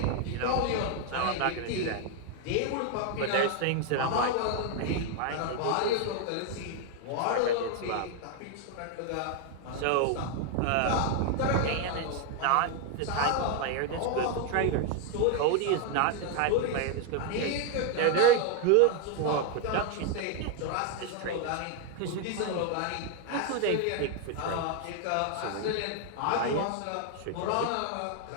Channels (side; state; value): both; different; correlation 0.01